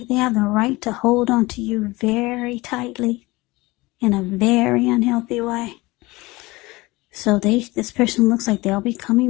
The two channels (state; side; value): quieter; right; 21.6 dB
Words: they have the right to hold on to you very tightly in a very unhealthy way. So this person looks like they'll be